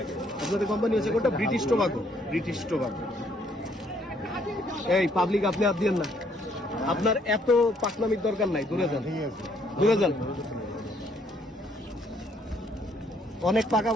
আপনাদের কোম্পানি হচ্ছে কোনটা? British tobacco. British tobacco. এই পাবলিক আপনি হাত দিয়েন না, আপনার এত পাকনামির দরকার নাই, দূরে যান, দূরে যান। অনেক পাকা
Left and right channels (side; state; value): both; normal; correlation 0.67